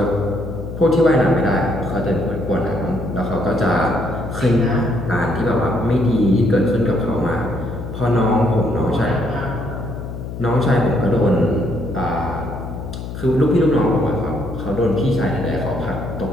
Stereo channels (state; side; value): noise; left; hum, 8 dB below the sound